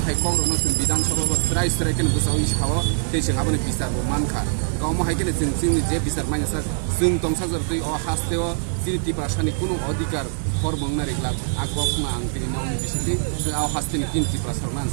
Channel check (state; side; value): silent; left; 60 dB below the other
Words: हायखौ रनो जों बिधान सभा स्राय केन गोसाव इसाव दैजों आबोनि बिसारबो मानखा गावमो हायकेन जों जोंनि जे बिसार माइनासा जों दंसा जरतै अ हास्तेव जिरिति भाषानि कुनु अधिकार फरमंना रेगला आगवा फुङा आं दिनै नावनि बिसिनि जों आव हास्तेनि किनति प्रसारना